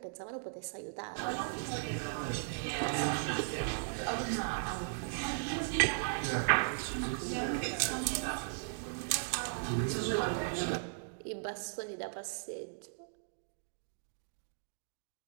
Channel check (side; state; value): left; silent; digital silence